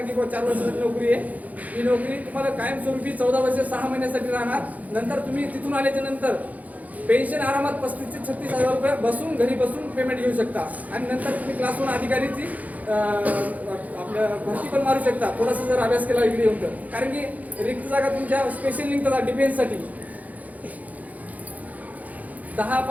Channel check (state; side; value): late; left; 0.076 ms